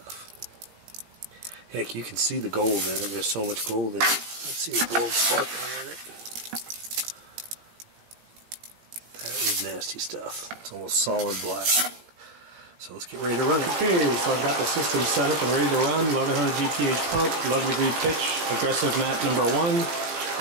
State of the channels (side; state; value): left; late; 18 ms